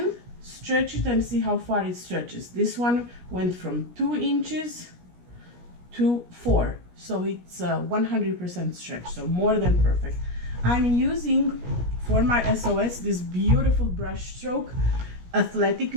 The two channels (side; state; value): left; late; 17 ms